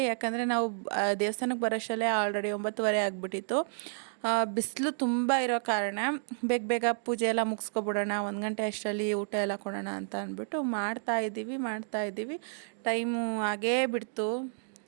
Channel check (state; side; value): silent; left; digital silence